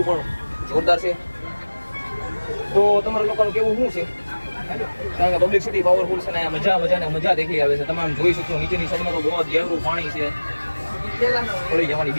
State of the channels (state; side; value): inverted; both; correlation -1.00